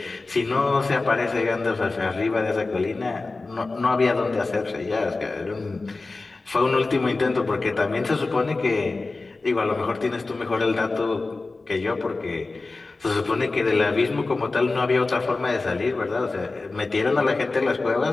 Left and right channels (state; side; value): quieter; right; 3.5 dB